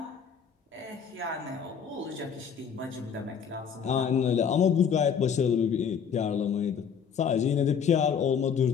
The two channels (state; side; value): quieter; right; 7.2 dB